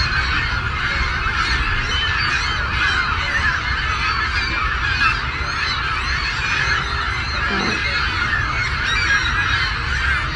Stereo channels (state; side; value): identical; both; correlation 1.00